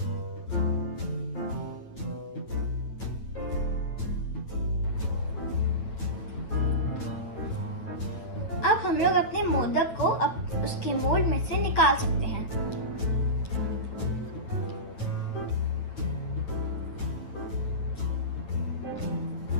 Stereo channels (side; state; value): right; late; 9.0 ms